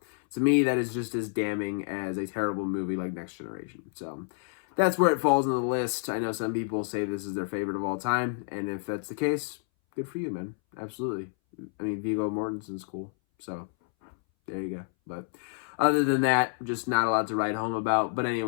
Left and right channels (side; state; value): right; silent; 58 dB below the other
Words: to me, that is just as damning as a terrible movie like Next Generation. So that's where it falls on the list. I know some people say this is their favorite of all time, and if that's the case, good for you, man. Absolutely. I mean, Viggo Mortensen's cool, so there you go. But other than that, just not a lot to write home about. But